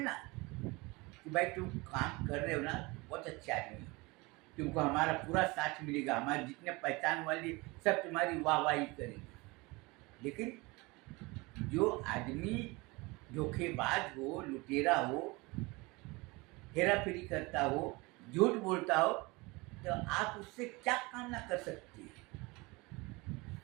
कि भाई तुम काम कर रहे हो ना, बहुत अच्छे आदमी हो, तुमको हमारा पूरा साथ मिलेगा, हमारे जितने पहचान वाले सब तुम्हारी वाहवाही करेंगे। लेकिन जो आदमी धोखेबाज हो, लुटेरा हो, हेरा फेरी करता हो, झूठ बोलता हो, तो आप उससे क्या कामना कर सकते हैं,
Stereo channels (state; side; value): quieter; left; 24.5 dB